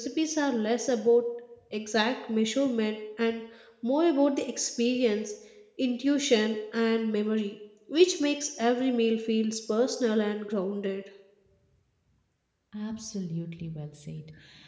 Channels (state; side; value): identical; both; correlation 1.00